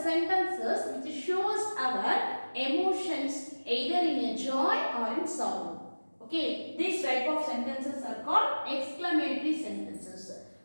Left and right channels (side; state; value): both; inverted; correlation -1.00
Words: sentences which shows our emotions either in a joy or in sorrow. okay, these type of sentences are called exclamatory sentences.